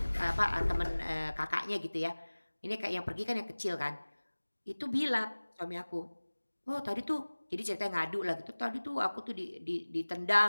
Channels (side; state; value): both; inverted; correlation -1.00